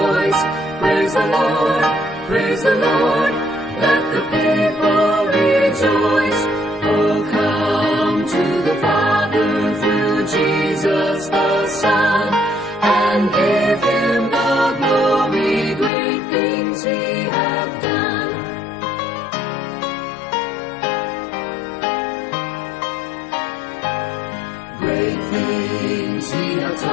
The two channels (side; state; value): right; drops out; at 15.9 s